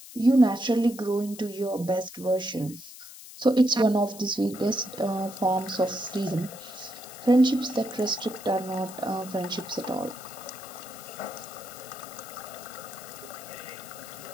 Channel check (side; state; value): left; noise; hiss, 16 dB below the sound